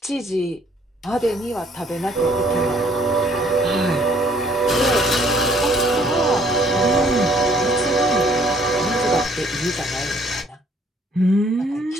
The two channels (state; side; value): normal; both; correlation 0.62